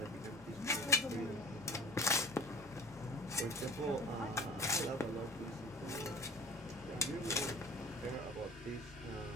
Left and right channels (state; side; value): normal; both; correlation 0.42